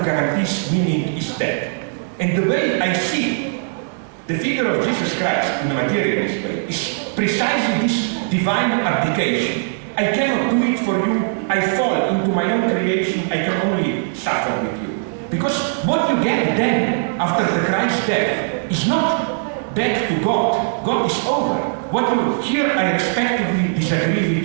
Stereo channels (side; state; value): left; silent; digital silence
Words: guarantees meaning, is dead. And the way I see the figure of Jesus Christ in the materialist way is precisely this divine abdication. I cannot do it for you, I fall into my own creation, I can only suffer with you. Because what you get then, after the Christ's death, is not back to God. God is over. What you here, I respectively disagree